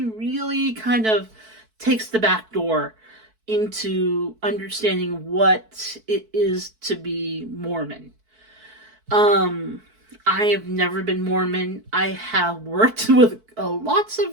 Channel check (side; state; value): left; late; 4.6 ms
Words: really kind of takes the back door into understanding what it is to be Mormon. I have never been Mormon. I have worked with lots of